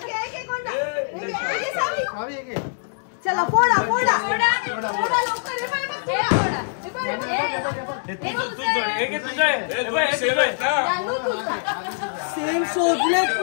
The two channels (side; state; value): right; silent; digital silence